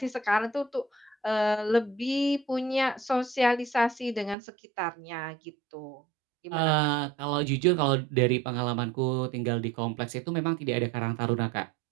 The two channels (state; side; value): drops out; left; at 4.4 s